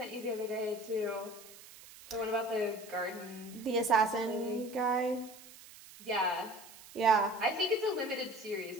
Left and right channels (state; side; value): noise; right; hiss, 19 dB below the sound